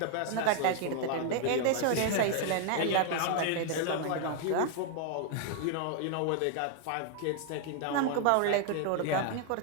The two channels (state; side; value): different; both; correlation 0.00